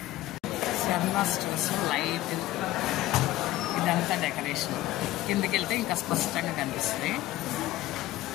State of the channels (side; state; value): right; quieter; 15.7 dB